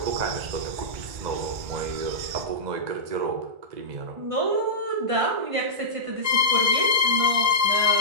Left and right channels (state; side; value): late; left; 1.5 ms